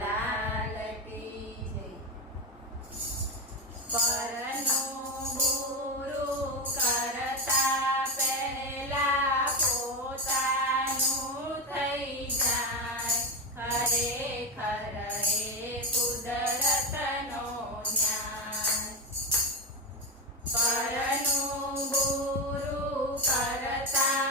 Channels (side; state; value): both; normal; correlation 0.14